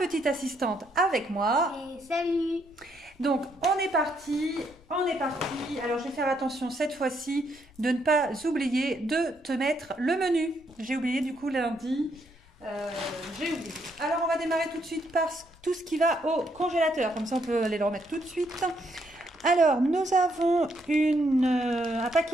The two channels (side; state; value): left; noise; rumble, 27 dB below the sound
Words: assistante avec moi. Et salut! Donc, on est parti. Alors, je vais faire attention cette fois-ci de ne pas oublier de te mettre le menu. J'ai oublié du coup lundi. J'ai oublié. Alors, on va démarrer tout de suite par tout ce qui va au congélateur. Comme ça, on peut aller le remettre tout de suite. Alors, nous avons un